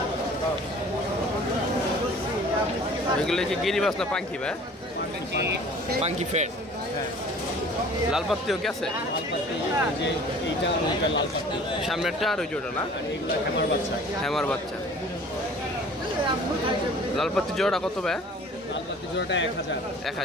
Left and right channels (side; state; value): both; normal; correlation 0.48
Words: এগুলো কি গিরিবাস না পাঙ্কি ভাই? পাঙ্কি ফেট। লাল পাত্তিও কি আছে? সামনেরটা আর ওই জোড়া না? হ্যামার বাচ্চা। লাল পাত্তি জোড়া কত ভাই?